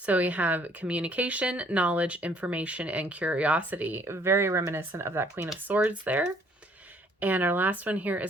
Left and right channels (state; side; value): normal; both; correlation 0.61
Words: we have communication, knowledge, information, and curiosity. Very reminiscent of that Queen of Swords there. And our last one here